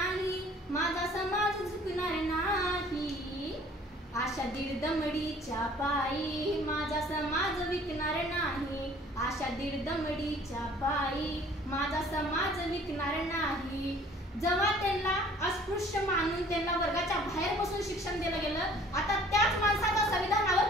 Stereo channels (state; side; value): normal; both; correlation 0.53